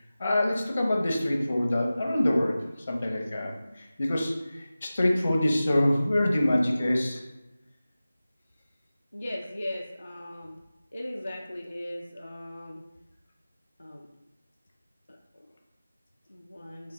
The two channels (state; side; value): inverted; both; correlation -0.96